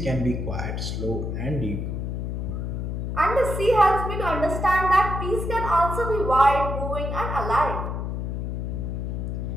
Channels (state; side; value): noise; left; hum, 3 dB below the sound